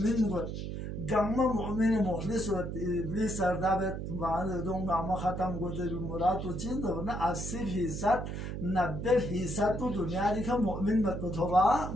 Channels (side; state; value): right; noise; hum, 5 dB below the sound